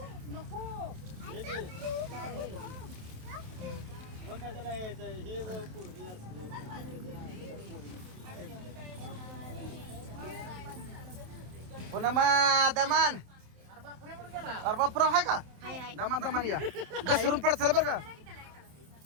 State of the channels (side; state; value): left; late; 27 ms